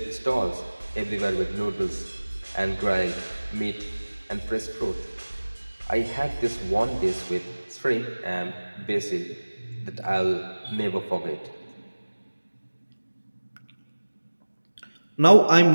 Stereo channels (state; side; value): inverted; both; correlation -1.00